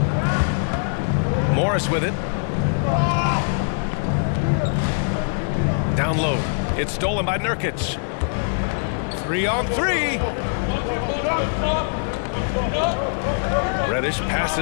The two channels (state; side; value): silent; right; digital silence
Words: Morris with it. Down low. It's stolen by Nurkic. 3 on 3. Reddish